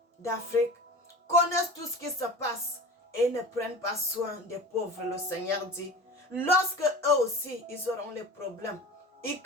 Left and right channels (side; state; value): both; normal; correlation 0.36